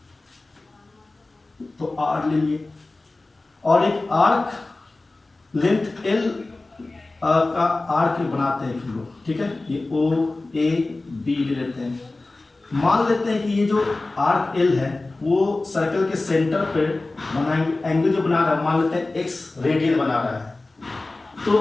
तो आर लेंगे और एक आर्क लेंथ एल का आर्क बनाते हैं हम लोग, ठीक है। ये ओ ए बी ले लेते हैं। मान लेते हैं कि ये जो आर्क एल है वो सर्कल के सेंटर पे बनाएंगे, एंगल जो बना रहा है मान लेते हैं एक्स रेडियन बना रहा है,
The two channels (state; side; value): quieter; right; 3.1 dB